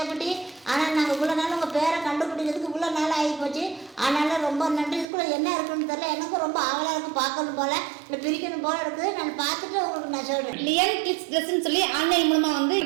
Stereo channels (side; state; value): left; drops out; at 5.1 s